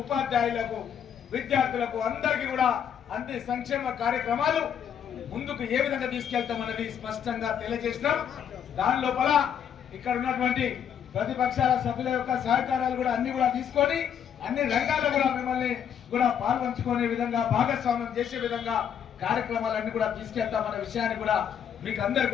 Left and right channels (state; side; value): quieter; right; 8.6 dB